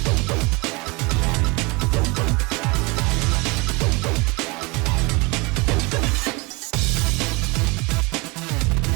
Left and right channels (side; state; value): left; quieter; 26.5 dB